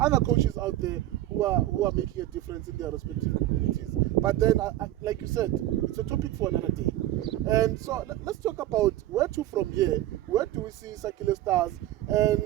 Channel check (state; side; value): quieter; left; 14.4 dB